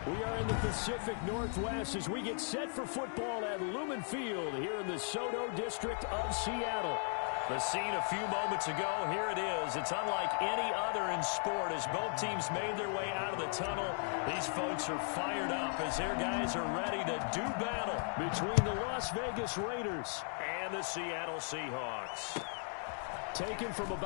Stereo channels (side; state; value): right; silent; 53 dB below the other